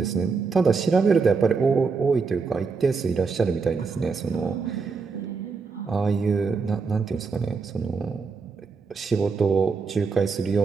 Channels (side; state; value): left; quieter; 4.8 dB